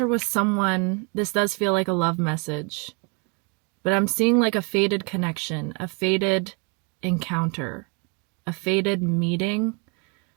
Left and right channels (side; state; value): left; quieter; 33.2 dB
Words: with someone, this does feel like a love message, but I'm seeing like a faded connection, a faded encounter, a faded meeting.